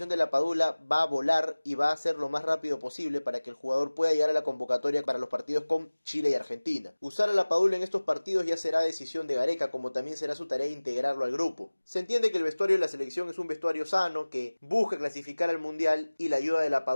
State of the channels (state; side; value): inverted; both; correlation -1.00